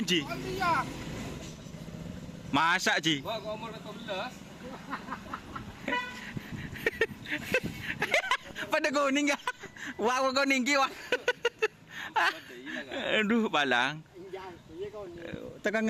Ji? Masak Ji. Pada kuning ya. Wah kuning ki wah. Aduh balang. Tekan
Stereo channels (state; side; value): identical; both; correlation 1.00